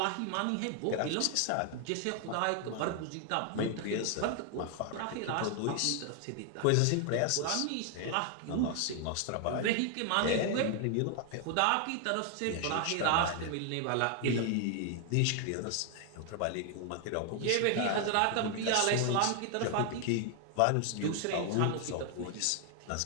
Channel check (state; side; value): different; both; correlation 0.00